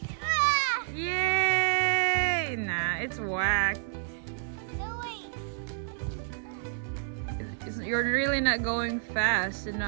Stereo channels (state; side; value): silent; left; digital silence